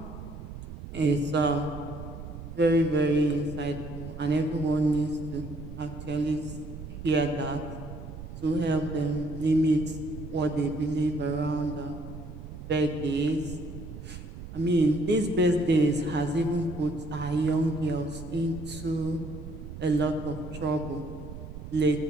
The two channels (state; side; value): noise; right; rumble, 11 dB below the sound